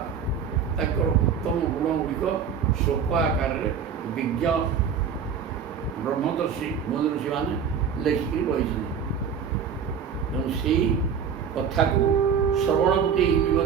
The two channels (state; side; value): quieter; left; 7.1 dB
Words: उत्तम गुण गुड़िक शोक आकार विज्ञ ब्रह्मदर्शी मुनि ऋषि मैंने लिखिकी रही से कथा को श्रवणपुटे ही